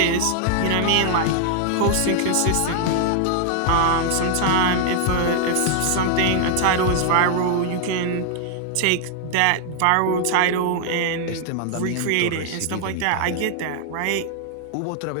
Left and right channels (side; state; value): both; different; correlation 0.00